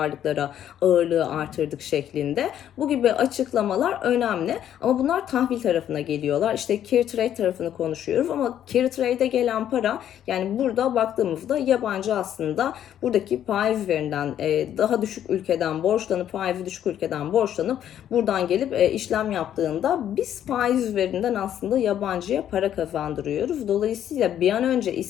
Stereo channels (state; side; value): quieter; right; 10.5 dB